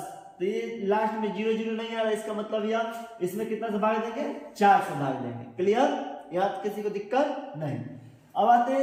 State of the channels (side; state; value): both; identical; correlation 1.00